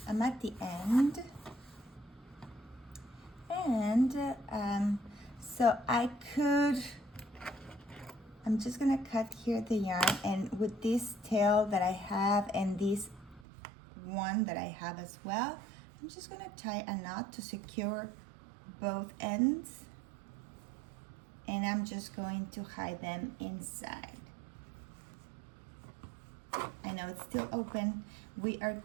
at the end, and so I'm just gonna cut here the yarn, and with this tail that I have and this one that I have as well, I'm just gonna tie a knot to secure both ends, and I'm just going to hide them inside. I know it's still open. We are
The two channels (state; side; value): drops out; left; at 13.5 s